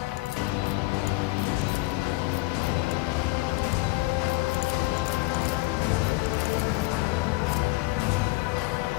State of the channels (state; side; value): quieter; right; 22.1 dB